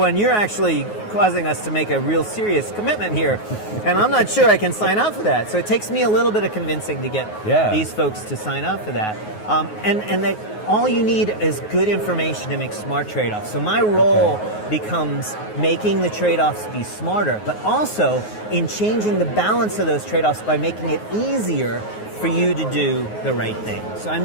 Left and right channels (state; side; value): late; right; 9.5 ms